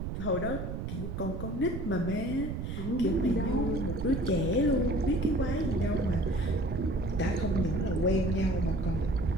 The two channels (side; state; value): right; noise; rumble, 5 dB below the sound